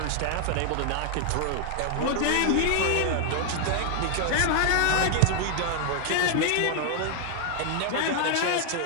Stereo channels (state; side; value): different; both; correlation 0.00